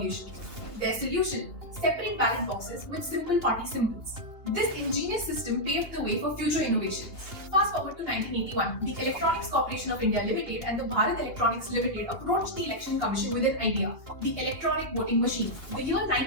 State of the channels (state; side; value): late; left; 2.8 ms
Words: Their solution: separate ballot boxes with simple party symbols. This ingenious system paved the way for future innovations. Fast forward to 1981, the Electronics Corporation of India Limited and the Bharat Electronics Limited approached the Election Commission with an idea: the electronic voting machine. The year